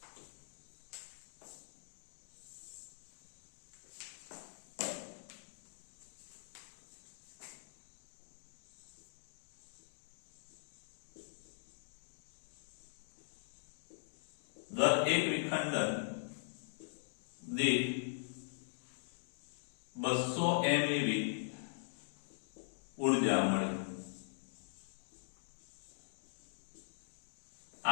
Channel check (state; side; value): silent; right; digital silence